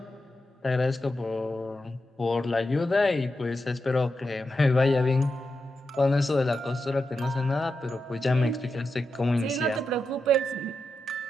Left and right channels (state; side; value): normal; both; correlation 0.88